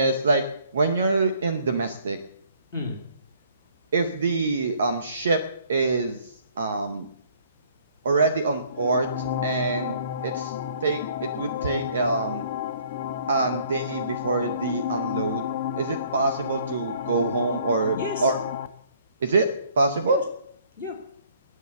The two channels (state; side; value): inverted; both; correlation -0.60